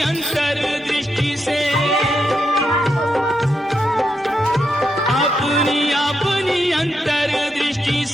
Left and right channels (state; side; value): normal; both; correlation 0.83